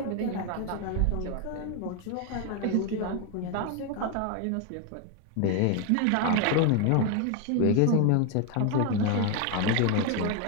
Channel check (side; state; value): both; different; correlation 0.01